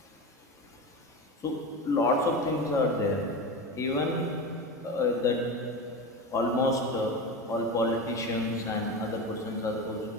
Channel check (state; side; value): normal; both; correlation 0.25